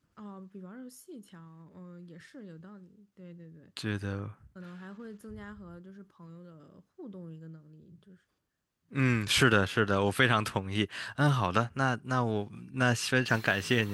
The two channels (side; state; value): both; identical; correlation 1.00